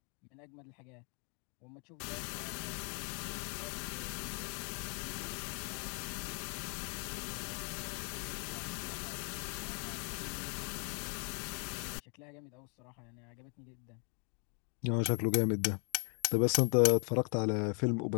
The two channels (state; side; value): quieter; right; 39.1 dB